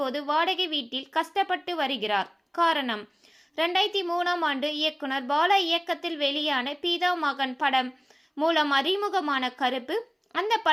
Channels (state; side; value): identical; both; correlation 1.00